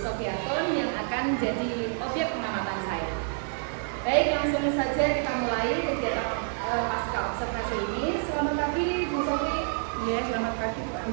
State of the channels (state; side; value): silent; left; 59 dB below the other